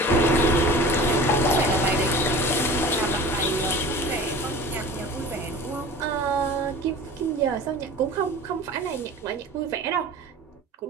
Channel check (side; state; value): both; normal; correlation 0.40